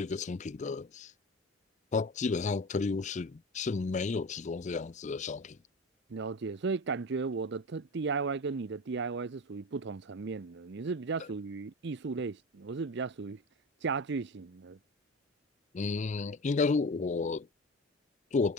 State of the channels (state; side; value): normal; both; correlation 0.29